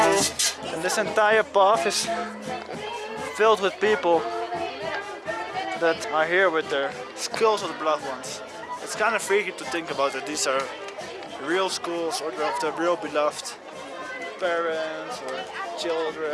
And this entire path is filled with people that are here with their skulls of the beloved ones. It's kind of freaky to think about that these are real skulls or of their real beloved parents or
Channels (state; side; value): identical; both; correlation 1.00